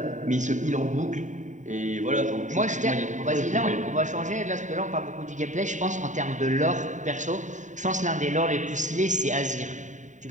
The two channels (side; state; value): left; late; 0.36 ms